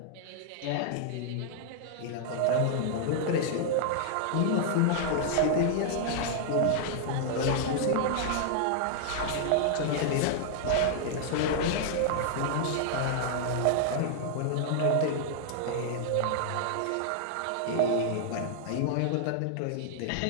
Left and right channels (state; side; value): different; both; correlation -0.01